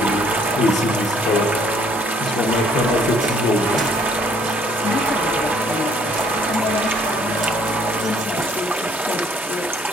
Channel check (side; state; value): both; normal; correlation 0.62